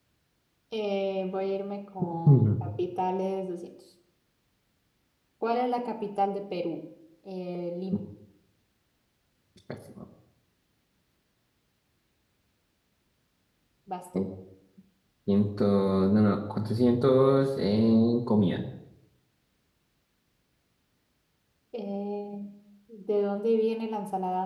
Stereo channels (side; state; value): both; identical; correlation 1.00